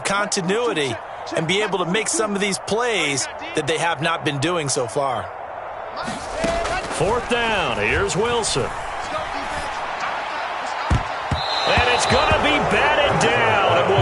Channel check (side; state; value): both; identical; correlation 1.00